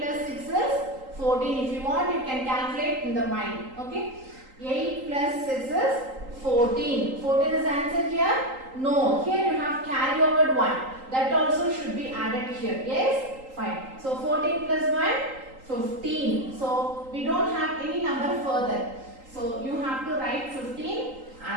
plus 6 is 14. If you want, you can calculate in the mind. Okay, 8 plus 6 is 14. 14 is answer here? No, here you have carry over 1. That also should be added here. Yes, fine. So 14 plus 1, 15. So we don't have any number further. So you have to write 15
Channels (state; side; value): late; left; 3.8 ms